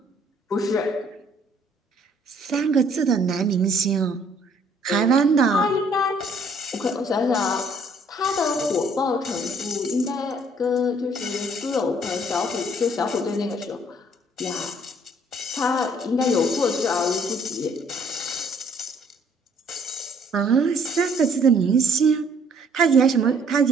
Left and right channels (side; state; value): both; normal; correlation 0.62